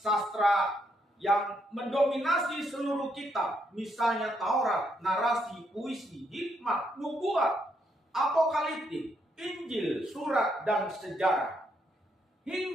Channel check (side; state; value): both; normal; correlation 0.76